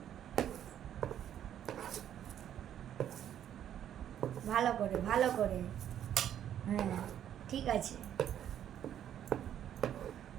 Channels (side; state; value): left; quieter; 10.3 dB